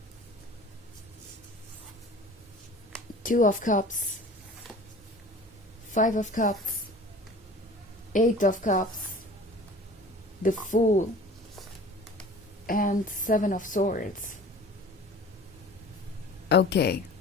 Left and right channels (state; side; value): normal; both; correlation 0.43